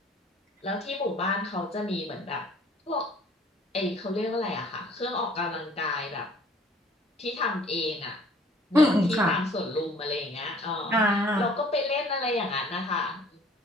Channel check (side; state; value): both; normal; correlation 0.55